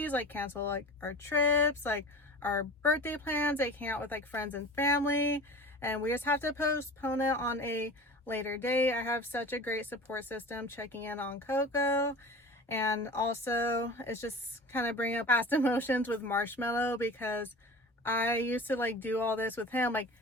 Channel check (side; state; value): both; normal; correlation 0.37